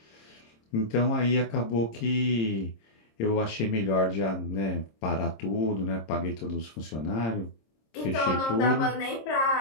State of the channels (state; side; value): late; right; 26 ms